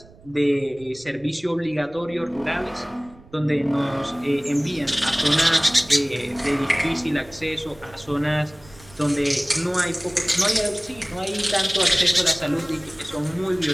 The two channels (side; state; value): right; noise; rumble, 24 dB below the sound